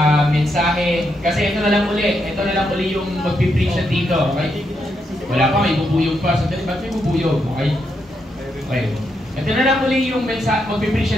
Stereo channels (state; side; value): normal; both; correlation 0.81